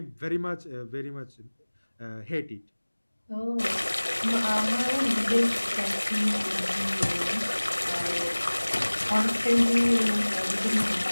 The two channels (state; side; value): inverted; both; correlation -1.00